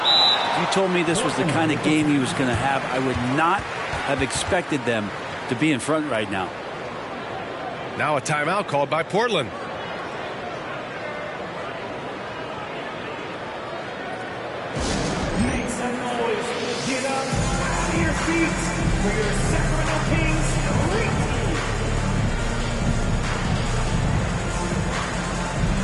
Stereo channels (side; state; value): both; identical; correlation 1.00